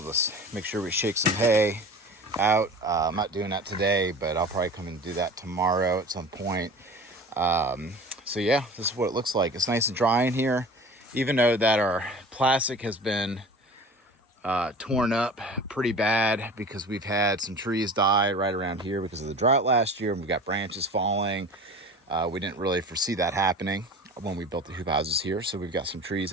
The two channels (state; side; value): normal; both; correlation 0.38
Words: just make sure we shake some hay out. I'm not doing that today, but I'll probably come and do that tomorrow at some point. So yeah, this is what it looks like. It's nice and dry in here, even though that our plastic has been torn up pretty bad because we've had some trees die right around here because of the drought last year, and we got branches falling. We didn't really foresee that happening when we built the hoop houses here, so we've got some trees